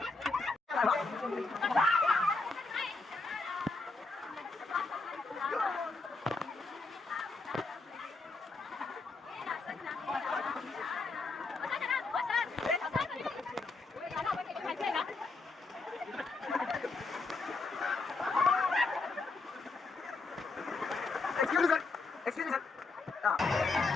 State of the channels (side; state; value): right; quieter; 3.8 dB